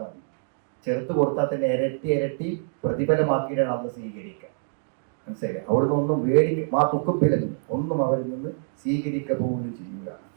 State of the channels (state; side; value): silent; left; digital silence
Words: മതി. ചെറുത്ത് കൊടുത്താൽ തന്നെ ഇരട്ടി പ്രതിഫലമാക്കിയിട്ടാണ് അത് സ്വീകരിക്കുക. മനസ്സിലായി? അവിടുന്ന് ഒന്നും ആ തുക്കപ്പിലും ഒന്നും അവരിൽ നിന്ന് സ്വീകരിക്കുക പോലും ചെയ്യുക.